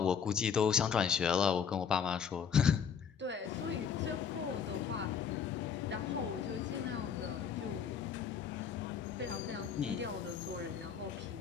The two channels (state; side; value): quieter; right; 7.1 dB